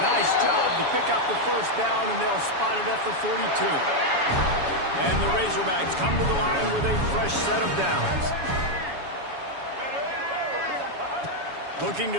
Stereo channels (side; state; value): left; late; 7.1 ms